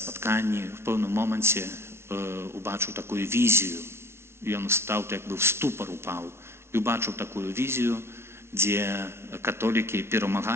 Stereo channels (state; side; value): late; left; 0.12 ms